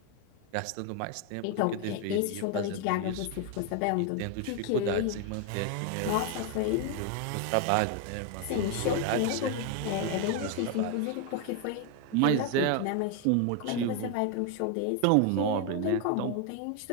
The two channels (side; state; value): both; different; correlation 0.01